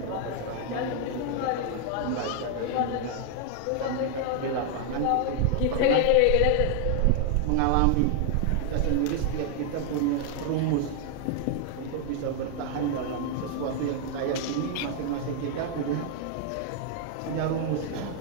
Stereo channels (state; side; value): different; both; correlation 0.00